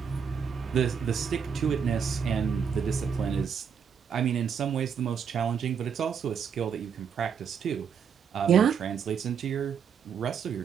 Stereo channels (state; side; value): quieter; left; 7.0 dB